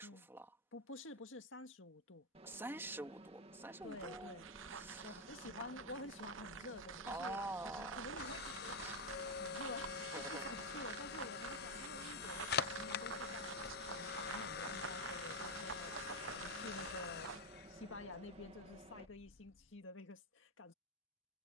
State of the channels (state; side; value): normal; both; correlation 0.04